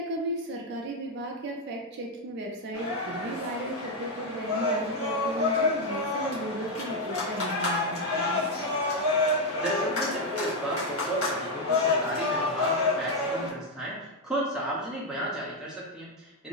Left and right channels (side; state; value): both; normal; correlation 0.03